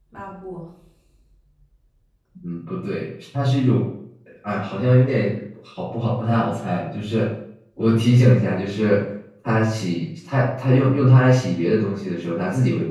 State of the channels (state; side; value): identical; both; correlation 1.00